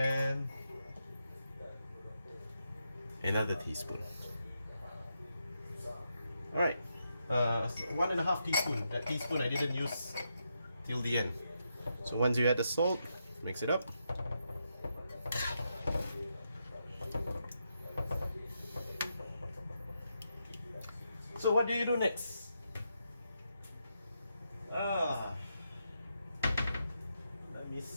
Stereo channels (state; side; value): inverted; both; correlation -0.83